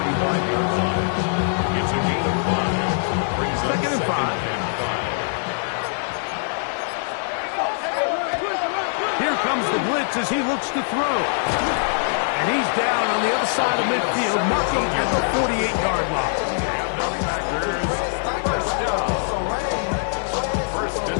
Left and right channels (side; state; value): right; silent; digital silence